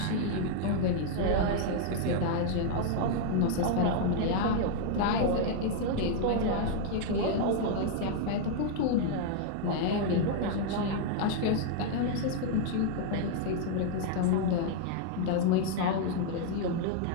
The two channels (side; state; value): both; different; correlation 0.00